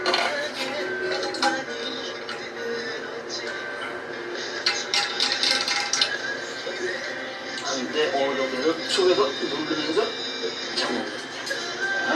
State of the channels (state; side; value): identical; both; correlation 1.00